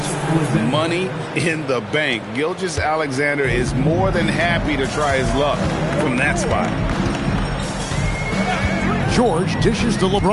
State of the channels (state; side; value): identical; both; correlation 1.00